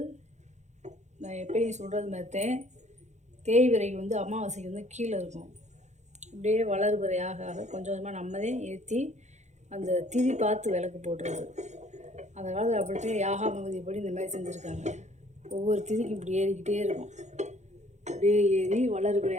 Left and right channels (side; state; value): left; late; 0.33 ms